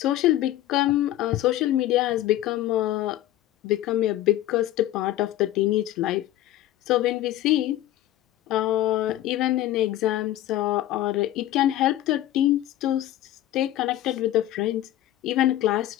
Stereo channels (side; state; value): right; quieter; 14.0 dB